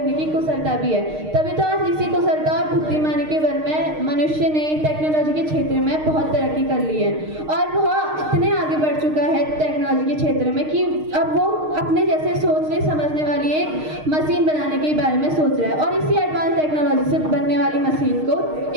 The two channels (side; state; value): left; late; 6.5 ms